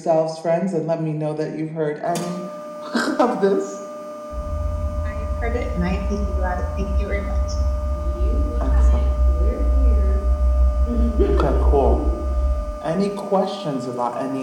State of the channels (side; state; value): both; identical; correlation 1.00